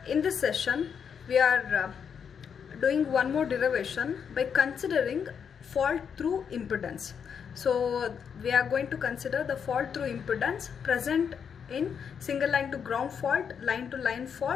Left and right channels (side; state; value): right; quieter; 7.2 dB